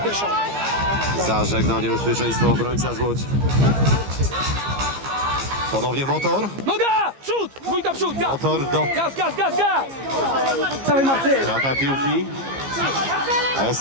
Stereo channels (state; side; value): late; left; 15 ms